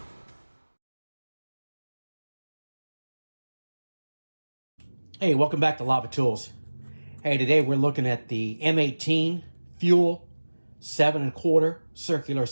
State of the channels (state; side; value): inverted; both; correlation -1.00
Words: Hey, welcome back to Lava Tools. Hey, today we're looking at the M18 Fuel 7 1/4 circular